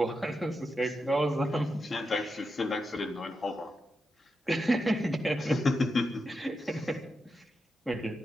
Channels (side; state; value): both; normal; correlation 0.87